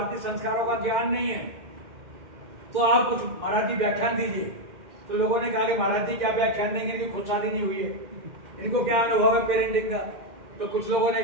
संस्कारों का ज्ञान नहीं है, तो आप कुछ मराठी व्याख्यान दीजिए। तो लोगों ने कहा कि महाराज जी क्या व्याख्यान देंगे, इनकी खुद शादी नहीं हुई है, इनको क्या अनुभव है पेरेंटिंग का। तो कुछ लोगों ने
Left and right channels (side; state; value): left; late; 2.1 ms